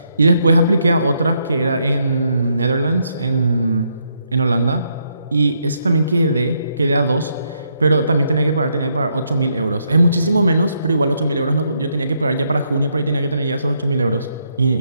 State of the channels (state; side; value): inverted; both; correlation -0.76